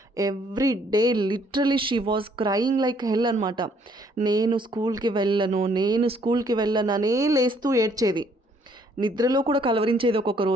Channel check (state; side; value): normal; both; correlation 0.65